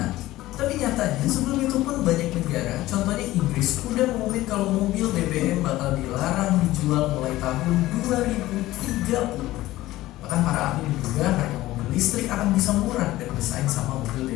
Tapi nyatanya sebelum itu pun banyak negara, contohnya Inggris, udah mengumumkan kalau mobil BBM bakal dilarang dijual mulai tahun 2030. Bahkan para ahli menduga harga mobil listrik akan bisa murah dan bersaing sama mobil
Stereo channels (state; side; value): quieter; right; 16.6 dB